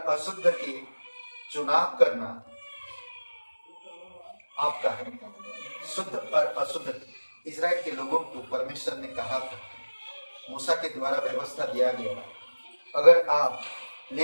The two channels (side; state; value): both; inverted; correlation -1.00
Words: अशुद्ध के चुनाव करना आपका है। शुद्ध और अशुद्ध इजराइल के लोगों को परमेश्वर ने कहा था, मूसा के द्वारा व्यवस्था दिया गया। अगर आप